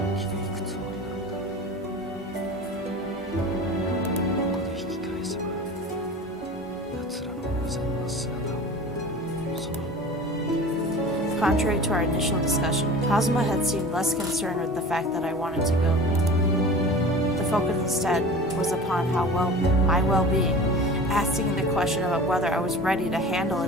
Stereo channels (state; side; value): normal; both; correlation 0.37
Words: 生きていくつもりなのだ。ここで引き返せば、奴らの無残な姿を、その Contrary to our initial discussion, Kazama had seemed less concerned with the fact that I wanted to go. The focus instead was upon my well-being, asking the question about whether I was ready to handle